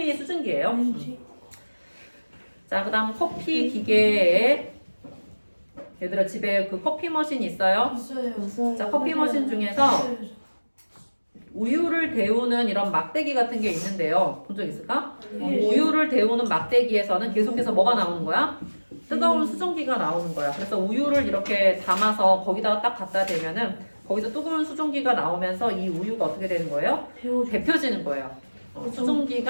수증기예요. 자, 그다음 커피 기계에 얘들아 집에 그 커피 머신 있어요? 있어요. 자, 커피 머신 중에서 우유를 데우는 이런 막대기 같은 게 있는데요. 본 적 있을까? 우유를 데우는 막대기에서는 계속해서 뭐가 나오는 거야? 뜨거운 수증기가 나오는 거야. 그래서 우유를 이렇게 담아서 거기다가 딱 갖다 대면은 거기서 뜨거운 수증기가 나오면서 이 우유가 어떻게 되는 거예요? 데펴지는 거예요.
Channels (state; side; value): inverted; both; correlation -1.00